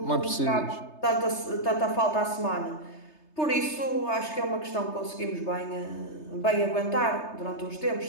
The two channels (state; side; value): late; right; 3.3 ms